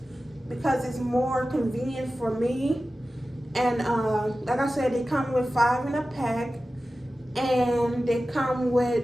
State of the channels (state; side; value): normal; both; correlation 0.95